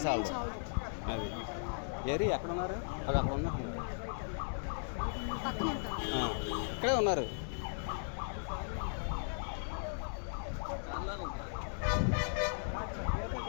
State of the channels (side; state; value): right; silent; digital silence